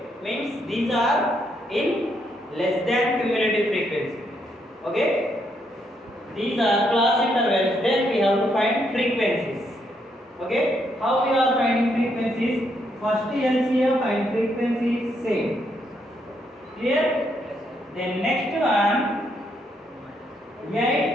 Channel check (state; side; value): normal; both; correlation 0.75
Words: means these are in less than cumulative frequency. Okay, these are class intervals. Then we have to find frequencies. Okay, how we are finding frequencies? First LCM and frequency is same. Clear? Then next one